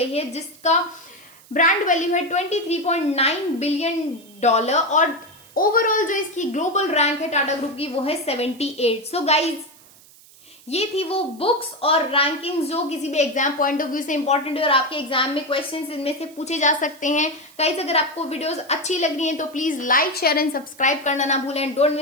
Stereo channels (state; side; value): noise; right; hiss, 24 dB below the sound